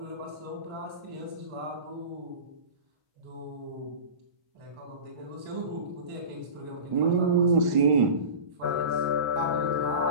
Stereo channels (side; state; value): left; late; 1.5 ms